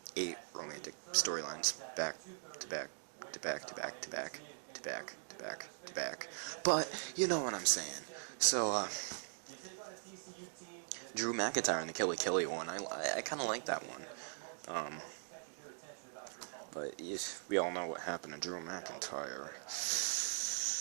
8 romantic storylines, back to back, to back, to back, to back, to back, to back, to back. But, you know what I'm saying. So, Drew McIntyre and the Killy Killy one, I kind of like that one. But we all know what happened to Drew McIntyre.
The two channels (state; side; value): silent; left; digital silence